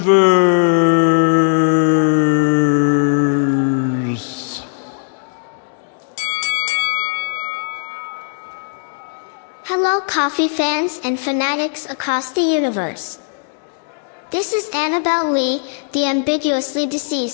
Hello, coffee fans and fanatics across the universe. This is Annabelle Lee, the ambiguously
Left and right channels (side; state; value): right; silent; digital silence